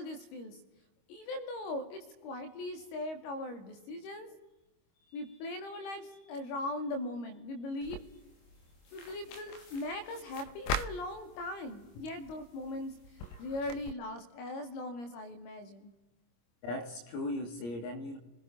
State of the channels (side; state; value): right; late; 25 ms